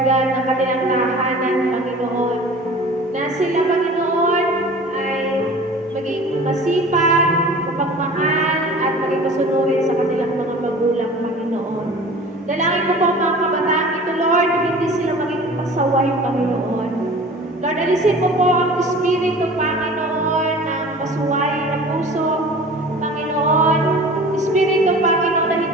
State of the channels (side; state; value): both; normal; correlation 0.42